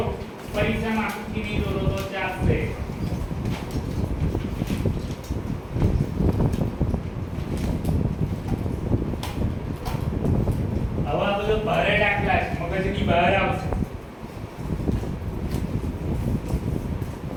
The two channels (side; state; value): both; identical; correlation 1.00